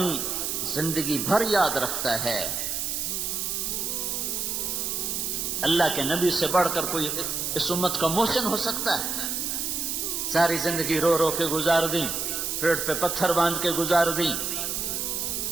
زندگی بھر یاد رکھتا ہے، اللہ کے نبی سے بڑھ کر کوئی اس امت کا محسن ہو سکتا ہے؟ ساری زندگی رو رو کے گزار دی، پیٹ پہ پتھر باندھ کے گزار دی۔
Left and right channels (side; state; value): right; noise; hiss, 1 dB below the sound